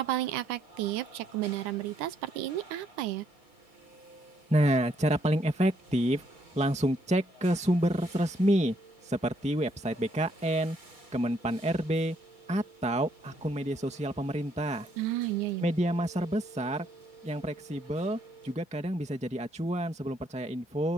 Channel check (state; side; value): normal; both; correlation 0.71